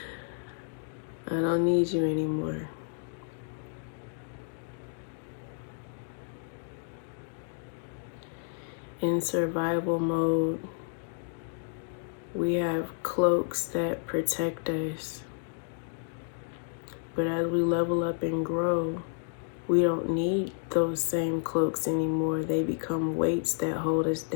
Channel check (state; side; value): silent; right; digital silence